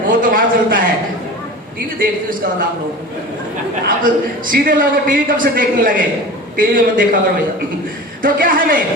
वो तो वहां चलता है। टीवी देखते हो इसका मतलब आप सीधे लोग टीवी कब से देखने लगे? टीवी में देखा करो भैया। तो क्या है,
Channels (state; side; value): normal; both; correlation 0.34